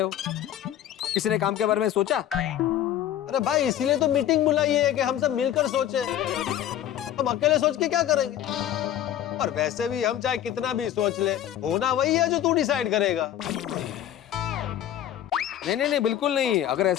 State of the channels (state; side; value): quieter; right; 11.4 dB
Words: हो। किसी ने काम के बारे में सोचा? अरे भाई इसीलिए तो मीटिंग बुलाई है कि हम सब मिलकर सोचे। हम अकेले सोच के क्या करेंगे? और वैसे भी हम चाहे कितना भी सोच ले, होना वही है जो तू डिसाइड करेगा। नहीं नहीं नहीं, बिल्कुल नहीं। अगर